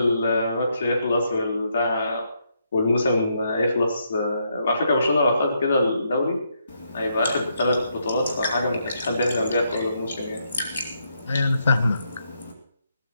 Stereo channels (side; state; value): both; inverted; correlation -0.78